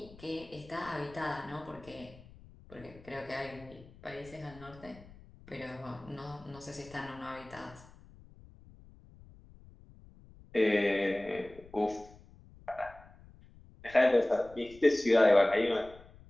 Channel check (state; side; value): noise; left; rumble, 22 dB below the sound